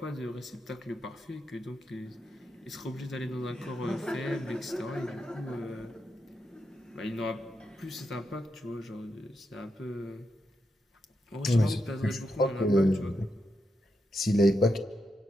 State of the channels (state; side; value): normal; both; correlation 0.84